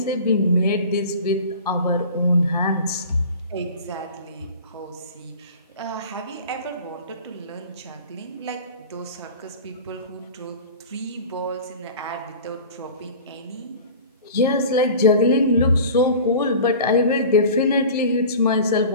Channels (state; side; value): inverted; both; correlation -0.39